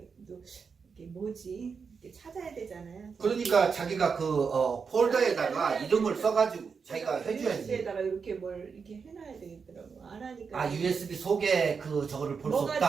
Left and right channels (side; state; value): left; quieter; 5.6 dB